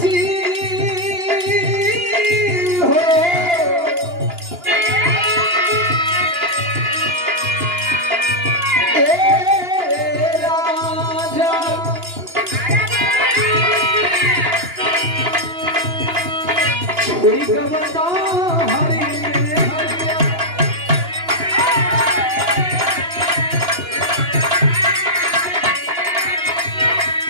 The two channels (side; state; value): left; late; 2.9 ms